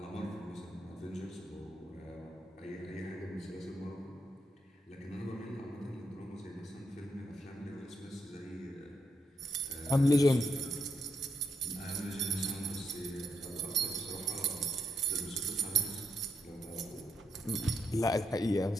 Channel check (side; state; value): both; normal; correlation 0.76